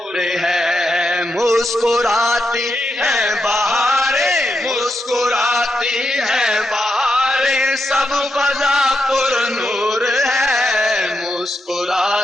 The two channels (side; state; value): both; normal; correlation 0.85